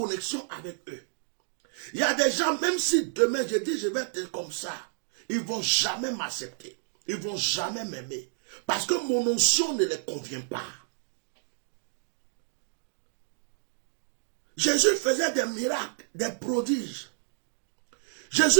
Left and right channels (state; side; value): silent; left; digital silence